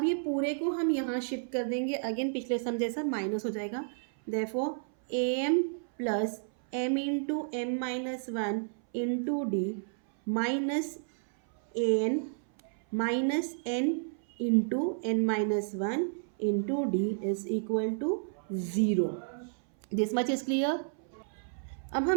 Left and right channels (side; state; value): left; silent; 57 dB below the other